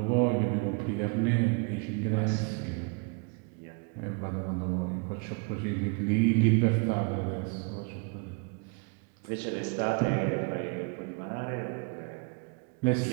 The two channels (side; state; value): left; quieter; 34.7 dB